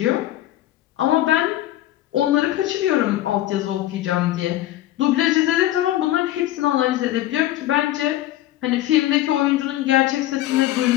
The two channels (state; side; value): quieter; right; 14.5 dB